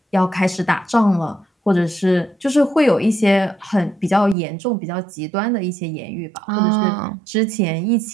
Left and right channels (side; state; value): left; drops out; at 4.4 s